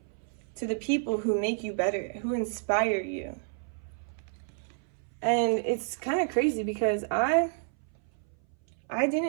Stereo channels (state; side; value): silent; left; 58 dB below the other